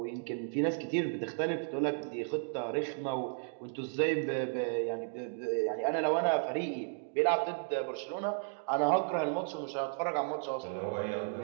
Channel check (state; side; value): silent; left; digital silence